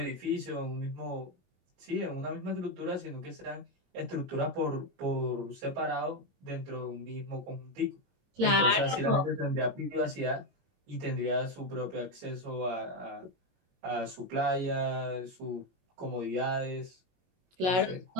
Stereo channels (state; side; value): late; left; 22 ms